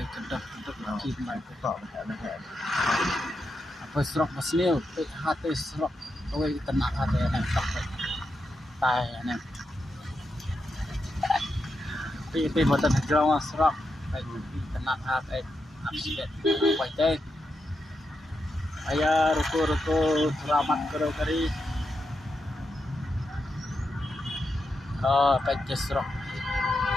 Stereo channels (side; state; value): both; normal; correlation 0.85